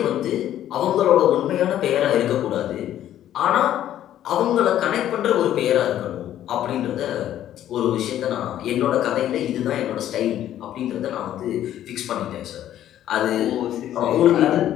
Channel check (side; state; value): right; quieter; 11.8 dB